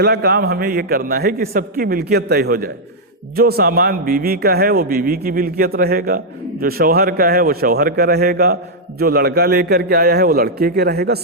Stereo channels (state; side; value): normal; both; correlation -0.05